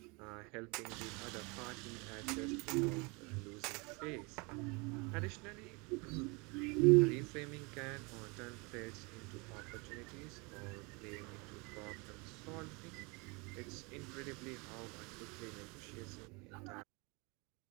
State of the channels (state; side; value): quieter; left; 29.1 dB